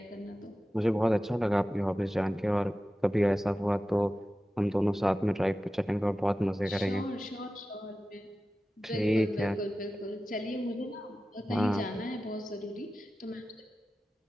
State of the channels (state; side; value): normal; both; correlation 0.94